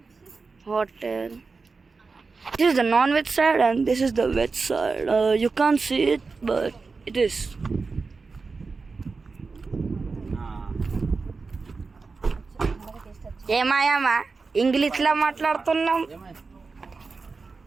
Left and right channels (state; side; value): quieter; left; 4.4 dB